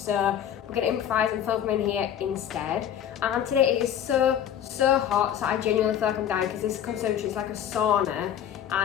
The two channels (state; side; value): quieter; right; 9.7 dB